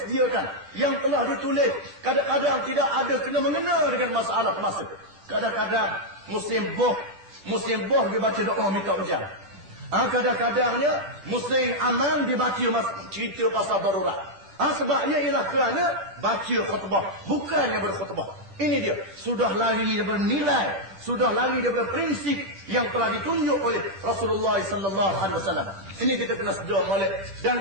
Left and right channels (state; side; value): late; left; 10 ms